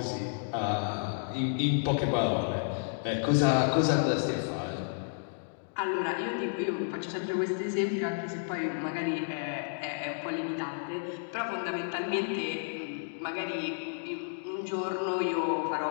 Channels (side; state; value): right; silent; digital silence